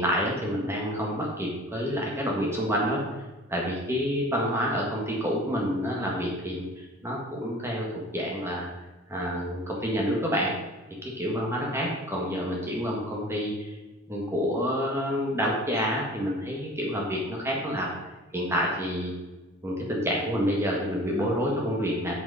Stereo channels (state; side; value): normal; both; correlation 0.44